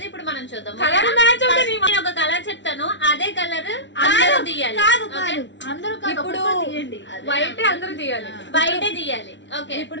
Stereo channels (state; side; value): late; right; 0.53 ms